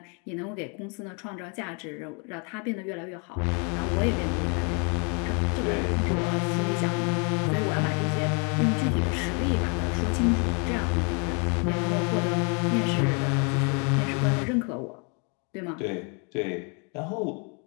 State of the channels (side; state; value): right; quieter; 36.1 dB